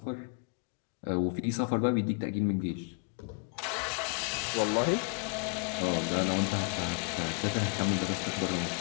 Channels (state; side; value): quieter; right; 37.7 dB